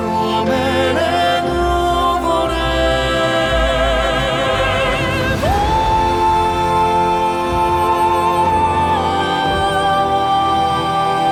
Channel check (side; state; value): both; identical; correlation 1.00